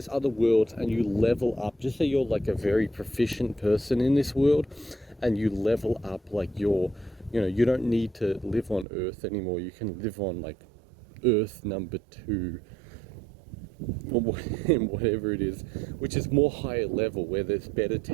other worlds and you level up, just say you're like a very proficient person in this world, and you level up, like you're, you know, you don't need to live on Earth anymore, you can live on like Earth number 2, or whatever it is, which is more higher level, where there's better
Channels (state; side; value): drops out; left; at 8.8 s